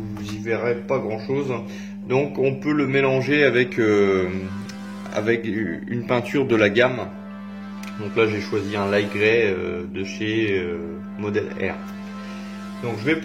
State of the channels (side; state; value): both; identical; correlation 1.00